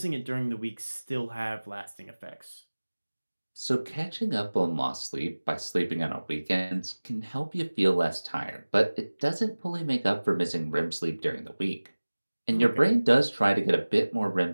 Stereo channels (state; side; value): inverted; both; correlation -1.00